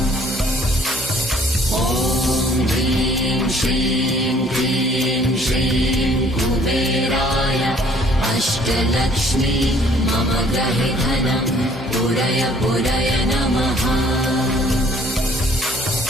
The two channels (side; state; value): both; normal; correlation 0.58